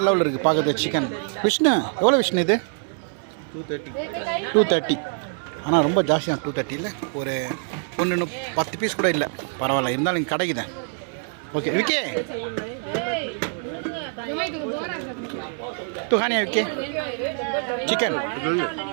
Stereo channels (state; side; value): silent; left; 58 dB below the other